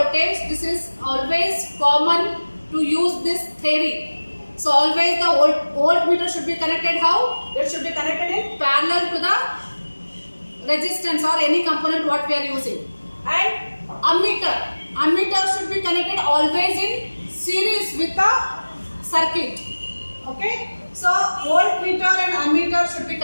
This is always common to use this theory. So always the voltmeter should be connected how? It should be connected in parallel to the resistance or any component what we are using. And ammeter should be connected always in series with the circuit. Okay. So voltmeter and ammeter should be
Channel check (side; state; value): both; inverted; correlation -1.00